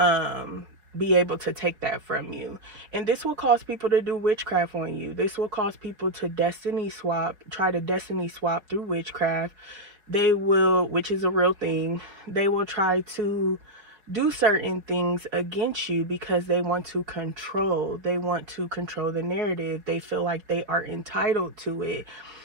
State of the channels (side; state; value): left; late; 4.8 ms